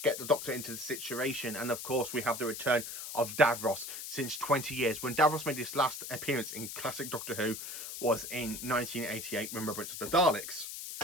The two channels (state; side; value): noise; left; hiss, 8 dB below the sound